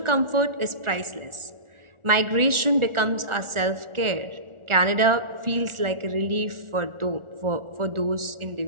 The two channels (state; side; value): late; left; 1.4 ms